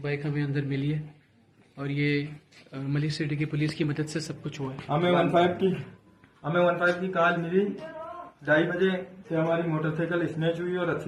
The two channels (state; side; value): identical; both; correlation 1.00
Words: बाइक हमें अंदर मिली है और ये मलिर सिटी की पुलिस की मदद से सब कुछ हुआ है। हमें 15 की कॉल मिली, 2:30 बजे से हमारी मोटरसाइकिल स्नैच हुई और